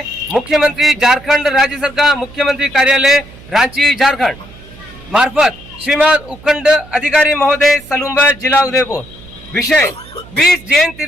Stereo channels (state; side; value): noise; right; hum, 21 dB below the sound